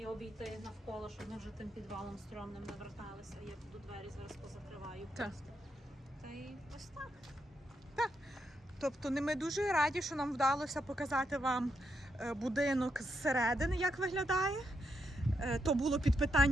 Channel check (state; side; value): normal; both; correlation 0.81